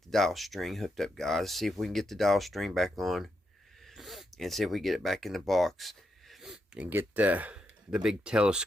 the dial string hooked up, guys. See if we can get the dial string back on. And see if we get it back in the box. And get the big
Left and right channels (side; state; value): both; normal; correlation 0.83